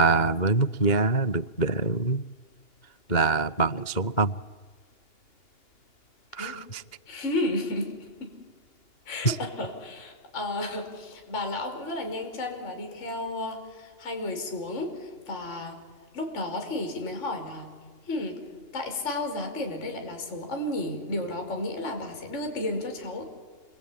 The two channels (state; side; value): late; right; 2.8 ms